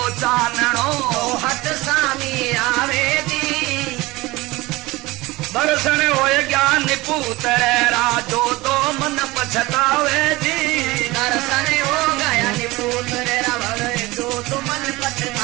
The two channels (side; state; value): left; quieter; 20.7 dB